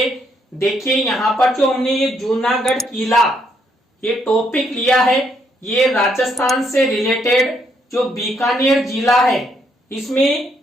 देखिए, यहाँ पर जो हमने ये जूनागढ़ किला ये टॉपिक लिया है, ये राजस्थान से रिलेटेड जो बीकानेर जिला है, इसमें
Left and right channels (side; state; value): both; normal; correlation 0.73